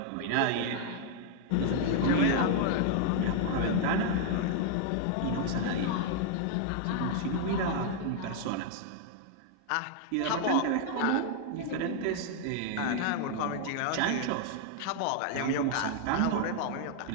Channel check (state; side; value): different; both; correlation 0.00